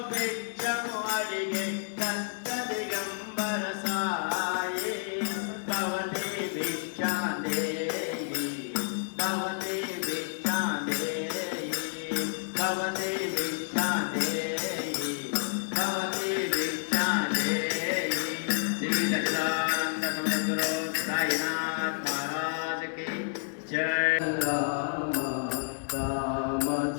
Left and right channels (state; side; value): silent; right; digital silence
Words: భిక్షము అడిగే దత్త దిగంబర సాయి భవతి భిక్షాందేహి భవతి భిక్షాందేహి భవతి భిక్షాందేహి భవతి భిక్షాందేహి. శ్రీ సచ్చిదానంద సమద్గురు సాయినాథ్ మహారాజ్ కి జై. రామ